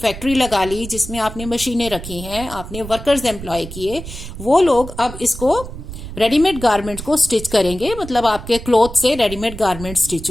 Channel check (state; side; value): noise; right; rumble, 11 dB below the sound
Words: लगा ली जिसमें आपने मशीनें रखी हैं, आपने वर्कर्स एम्प्लॉय किए, वो लोग अब इसको रेडीमेड गारमेंट को स्टिच करेंगे। मतलब आपके क्लॉथ से रेडीमेड गारमेंट स्टिच